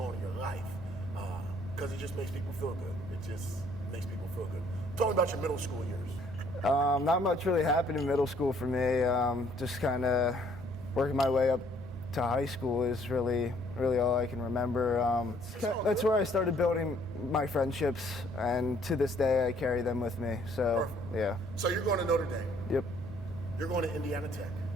in your life because it just makes people feel good. It just makes people feel good. Tell me about your middle school years. Not much really happened in middle school for me. Just kind of working my way up to high school is really all I can remember. That's where I started building my friendships, and to this day I carry them with me. So, yeah. So you're going to Notre Dame. Yep. You're going to Indiana Tech.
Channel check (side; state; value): both; normal; correlation 0.63